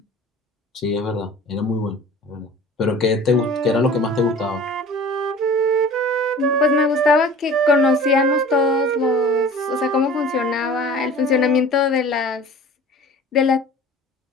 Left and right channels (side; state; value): both; normal; correlation 0.43